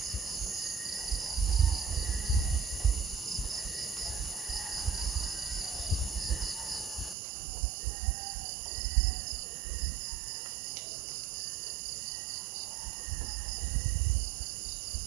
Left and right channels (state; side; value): drops out; left; at 7.2 s